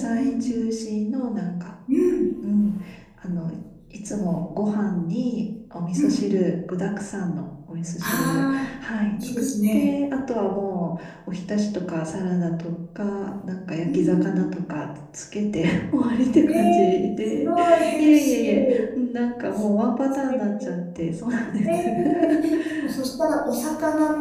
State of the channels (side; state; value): both; identical; correlation 1.00